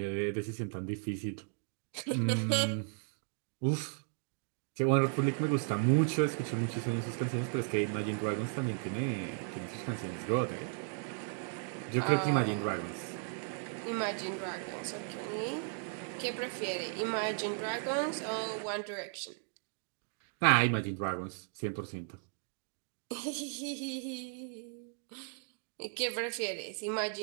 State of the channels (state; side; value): silent; left; 54 dB below the other